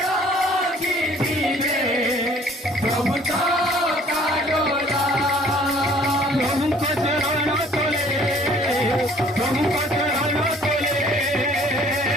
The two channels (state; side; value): normal; both; correlation 0.56